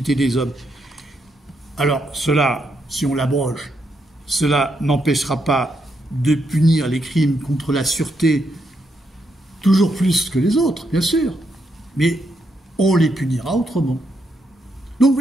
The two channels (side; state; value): both; normal; correlation 0.79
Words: des hommes. Alors cela, si on l'abroge, cela n'empêchera pas de punir les crimes contre la sûreté toujours plus que les autres, bien sûr, mais on les punira autrement. Donc vous